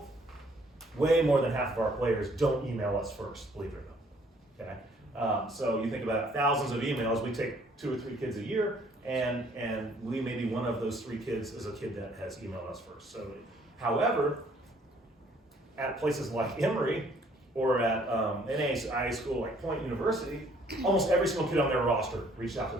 way more than half of our players don't email us first, believe it or not. Okay? So you think about thousands of emails, we take 2 or 3 kids a year, and we may be one of those 3 kids is a kid that has emailed us first. So, however, at places like Emory or at NAIA school like Point University, almost every single kid on their roster reached out to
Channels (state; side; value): normal; both; correlation 0.62